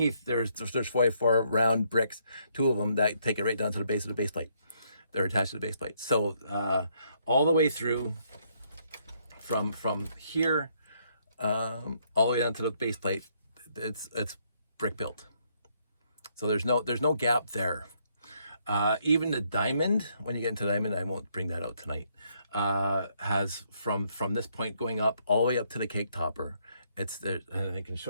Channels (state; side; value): inverted; both; correlation -0.72